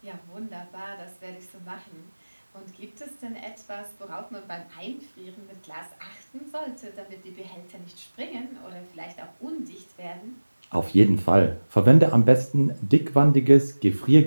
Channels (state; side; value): inverted; both; correlation -1.00